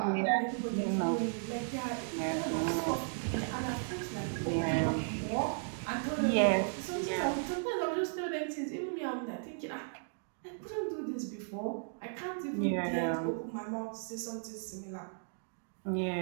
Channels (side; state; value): left; silent; digital silence